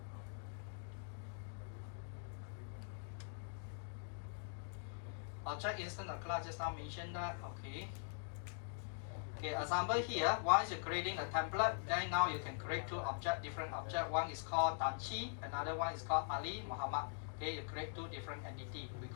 Object instant class, just now mentioned that. Okay. Okay, example here, once you're creating a template, then now you can create two objects, different objects. One is called Tanchi, another one is called Ali Muhammad. Okay, you create two different entities. We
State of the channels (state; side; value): silent; right; digital silence